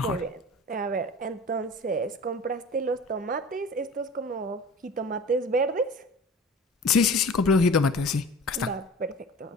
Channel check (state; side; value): normal; both; correlation 0.40